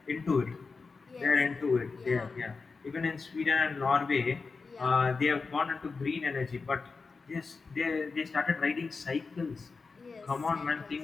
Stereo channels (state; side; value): quieter; right; 4.5 dB